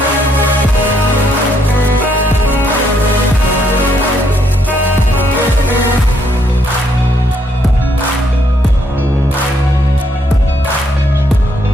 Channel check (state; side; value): normal; both; correlation 0.72